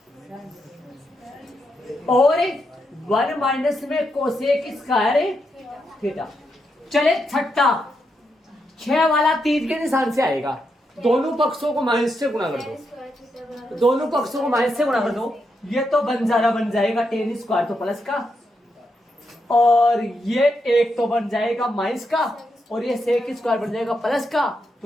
और 1 माइनस में कोसेक स्क्वायर थीटा। चले छठा 6 वाला तीर के निशान से आएगा, दोनों पक्षों को माइनस से गुणा कर दो, दोनों पक्षों को माइनस से गुणा कर दो, ये तो बंजारा बन जाएगा टेन स्क्वायर तो प्लस का और ये एक तो बन जाएगा माइनस का और ये सेक स्क्वायर बन जाएगा प्लस का,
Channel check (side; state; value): both; normal; correlation 0.82